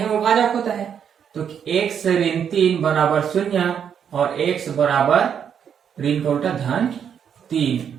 वो भाजक होता है। तो x ऋण 3 बराबर 0 और x बराबर ऋण का उल्टा धन 3।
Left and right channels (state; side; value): quieter; left; 8.0 dB